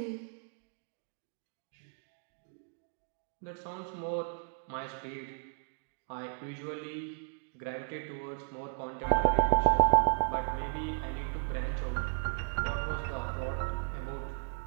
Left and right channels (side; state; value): left; silent; digital silence